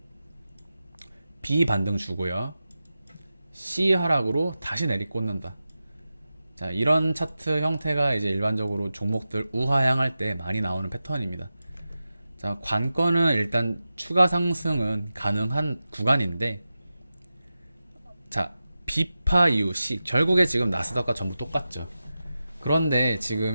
B 반등 주고요, C 하락으로 다시 내리꽂는다. 자, 이런 차트 형태가 이제 일반적으로 종목들 우하향할 때 많이 나오는 패턴입니다. 자, 관건은 일단 추가 상승은 가능한 구간인데, 자, B파 이후 C, 결국에 지금 나스닥과 전부 똑같죠. 그런데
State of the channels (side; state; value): both; inverted; correlation -0.93